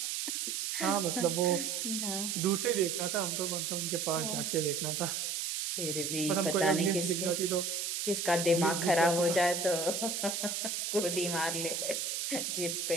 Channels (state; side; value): noise; right; hiss, 2 dB below the sound